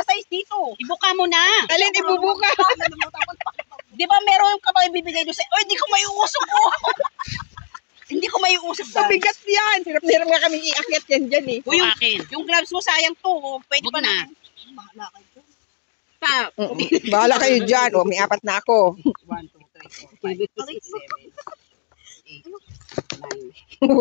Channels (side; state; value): right; silent; digital silence